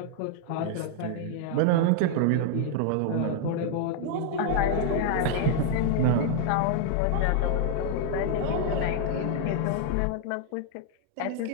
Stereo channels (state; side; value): different; both; correlation 0.00